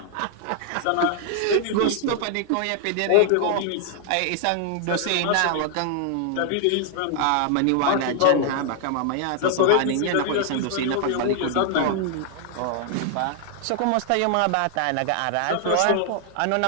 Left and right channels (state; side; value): different; both; correlation 0.00